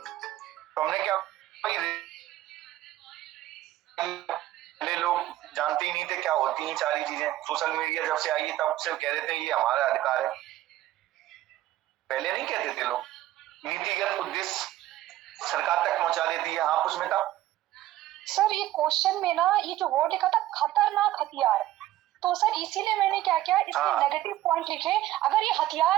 हमने क्या, पहले लोग जानते ही नहीं थे क्या होती हैं सारी चीजें। सोशल मीडिया जब से आई है तब से कह देते हैं ये हमारा अधिकार है, पहले नहीं कहते थे लोग। नीतिगत उद्देश्य सरकार तक पहुंचा देती है। हाँ उसमें था सर, ये क्वेश्चन में ना ये जो वर्ड लिखा था खतरनाक हथियार, तो सर इसीलिए मैंने क्या किया, इसके हाँ। नेगेटिव पॉइंट लिखे। अगर ये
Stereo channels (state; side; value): quieter; left; 14.7 dB